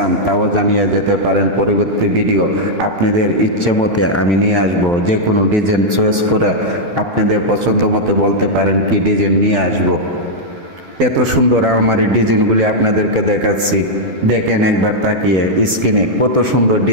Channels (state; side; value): late; left; 12 ms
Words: তাও জানিয়ে যেতে পারেন। পরবর্তী ভিডিও আপনাদের ইচ্ছে মতে আমি নিয়ে আসবো। যে কোনো ডিজাইন চয়েস করে আপনাদের পছন্দ মতো বলতে পারেন কি ডিজাইন নিয়ে আসবো। এত সুন্দর আলমারির ডিজাইনগুলি আপনাদেরকে দেখাচ্ছি, দেখেন একবার তাকিয়ে স্ক্রিনে কত সুন্দর